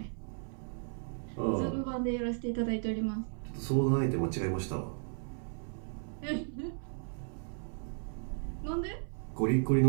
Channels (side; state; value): left; silent; 54 dB below the other